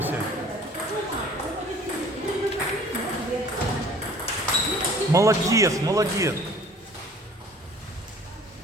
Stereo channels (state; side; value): normal; both; correlation 0.50